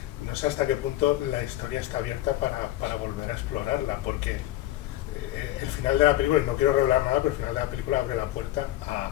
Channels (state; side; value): quieter; right; 15.0 dB